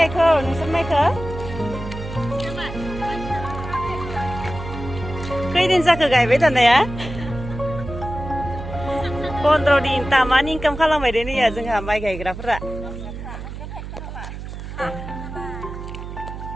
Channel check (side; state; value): right; noise; hum, 9 dB below the sound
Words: गायखो नोंसोर माइखौ खैदिन जाखो गायबाय थानाया 15 दिन तामानि इनकाम खालामबाय दे नैया जोंहा माइ गायग्राफोरा